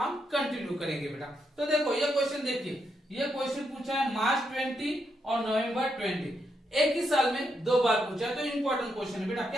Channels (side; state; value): both; normal; correlation 0.81